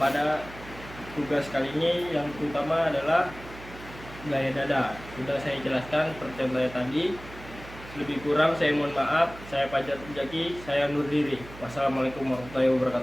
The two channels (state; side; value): noise; right; hum, 16 dB below the sound